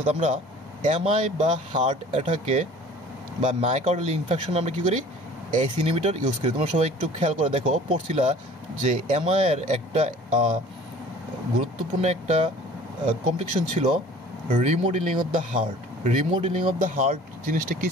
আমরা এমআই বা হার্ট অ্যাটাকে বা মায়োকার্ডিয়াল ইনফেকশন আমরা কী করি? এসি ইনহিবিটর ইউজ করি। তোমরা সবাই একটু খেয়াল করে দেখো, পড়ছিলা যে এমআইয়ের একটা গুরুত্বপূর্ণ একটা কমপ্লিকেশন ছিল remodelling of the heart. Remodelling of the heart জিনিসটা কী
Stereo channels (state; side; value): normal; both; correlation 0.47